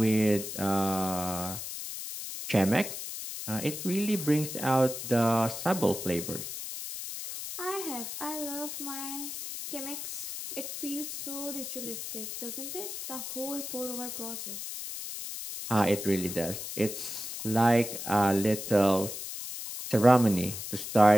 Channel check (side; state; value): left; noise; hiss, 7 dB below the sound